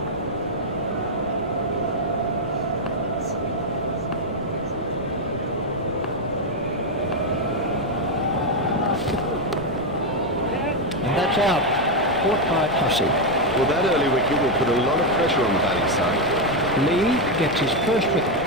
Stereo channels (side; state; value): both; normal; correlation 0.04